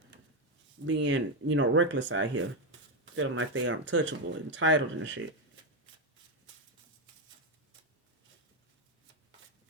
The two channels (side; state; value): both; normal; correlation 0.07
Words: being, you know, reckless out here, feeling like they are untouchable, entitled and shit.